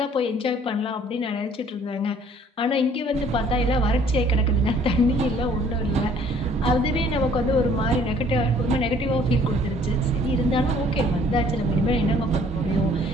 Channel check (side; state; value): both; normal; correlation 0.58